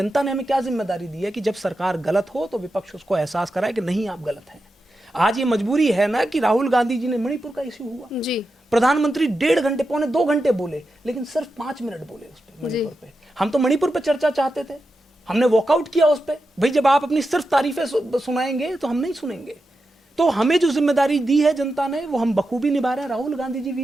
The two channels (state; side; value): normal; both; correlation 0.89